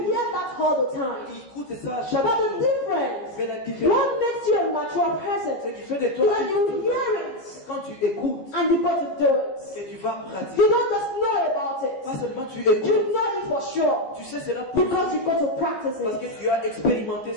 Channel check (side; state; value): right; late; 15 ms